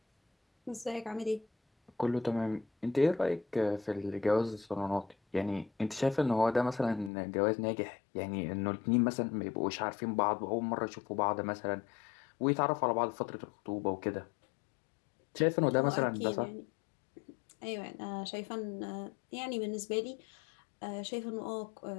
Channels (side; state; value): right; drops out; at 7.1 s